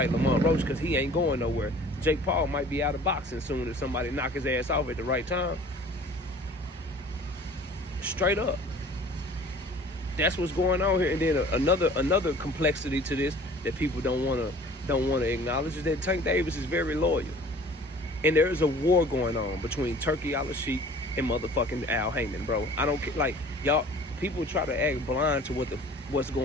Lamont Roach, because he ain't going nowhere. Jake Paul might be out of boxing soon if somebody knock his ass off at the right time. Straight up. That's what's going on here. And then another complexity to this that people don't want to acknowledge is that Tank Davis is very loyal. And there is a war going on between Turkey Al-Sheikh and motherfucking Al Heyman, bro. I don't care. Like, y'all, people try to act blind to what's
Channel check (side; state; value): both; normal; correlation 0.48